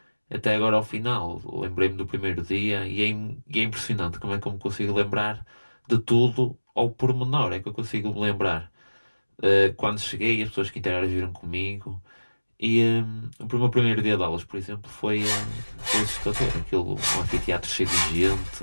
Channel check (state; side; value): inverted; both; correlation -1.00